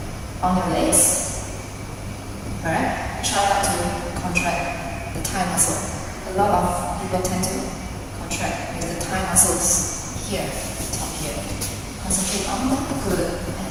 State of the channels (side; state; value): both; identical; correlation 1.00